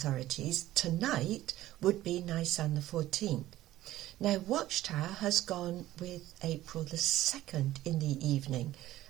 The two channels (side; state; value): left; quieter; 14.9 dB